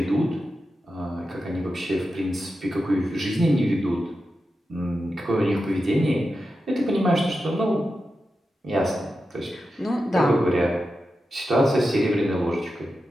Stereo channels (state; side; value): normal; both; correlation 0.90